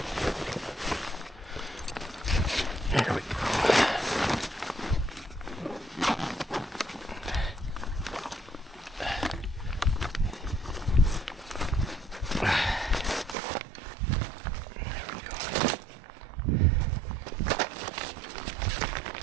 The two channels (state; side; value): drops out; left; at 13.4 s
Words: There we go.